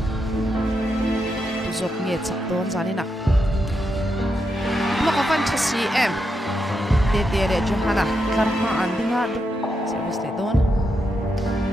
Tuzok nge chak don zanina. Block of 1 am. Dede Johanna karma andinga service le don.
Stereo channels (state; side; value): normal; both; correlation 0.84